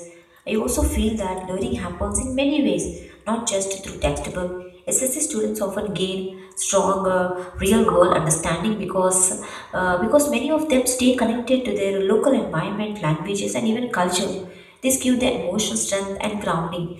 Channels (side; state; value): both; identical; correlation 1.00